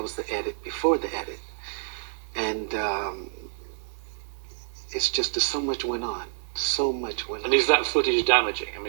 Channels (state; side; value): silent; left; digital silence